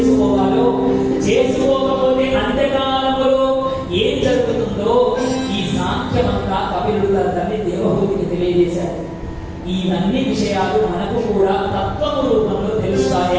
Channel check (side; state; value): both; identical; correlation 1.00